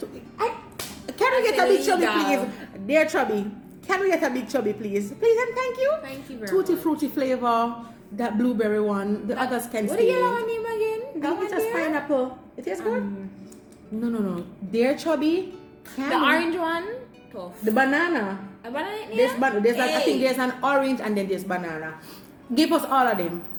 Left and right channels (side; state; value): both; identical; correlation 1.00